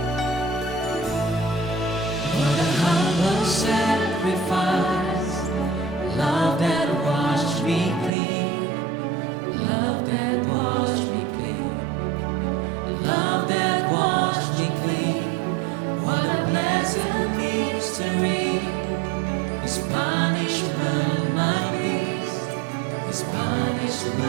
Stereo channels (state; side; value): drops out; left; at 8.1 s